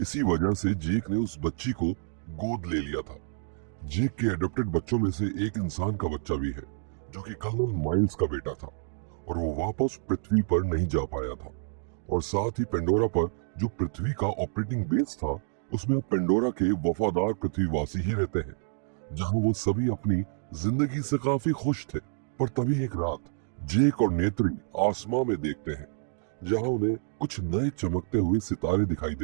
इसी वजह से जेक ने उस बच्ची को गोद ले लिया था। जेक के एडॉप्टेड बच्चों में से एक इंसान का बच्चा भी है, जो कि कर्नल माइल्स का बेटा था, और वो वापस पृथ्वी पर नहीं जा पाया था। और साथ ही पेंडोरा पर जो पृथ्वी का ऑपरेटिंग बेस था, उसमें अब पेंडोरा के वफादार पृथ्वीवासी ही रहते हैं, जहां वो सभी अपनी जिंदगी से काफी खुश थे। पर तभी एक रात जेक और नेत्री आसमां में देखते हैं, जहां उन्हें कुछ नए चमकते हुए सितारे दिखाई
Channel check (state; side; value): silent; left; 59 dB below the other